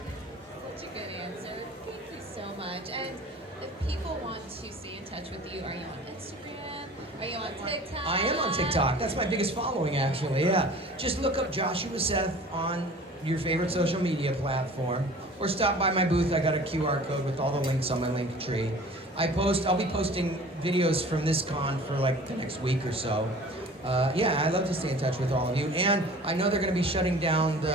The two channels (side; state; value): both; normal; correlation 0.45